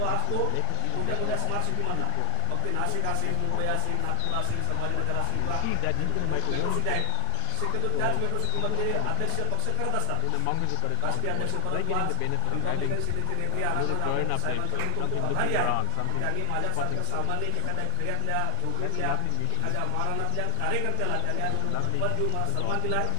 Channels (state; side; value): different; both; correlation 0.00